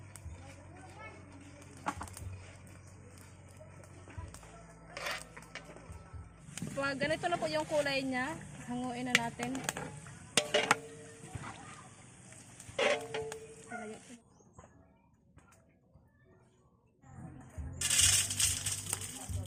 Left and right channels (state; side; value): identical; both; correlation 1.00